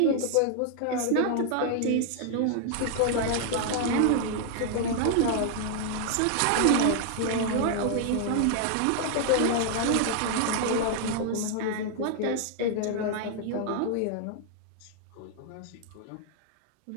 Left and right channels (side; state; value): both; different; correlation 0.00